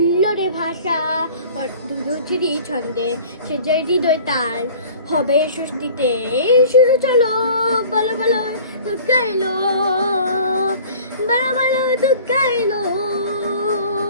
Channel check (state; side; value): inverted; both; correlation -0.46